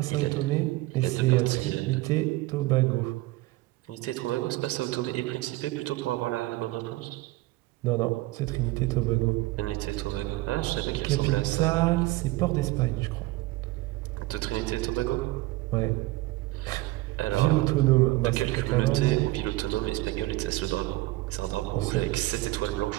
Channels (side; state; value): left; quieter; 19.5 dB